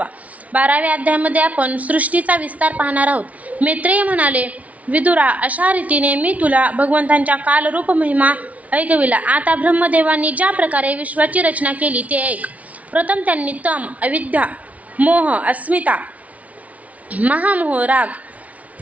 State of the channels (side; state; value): left; late; 0.069 ms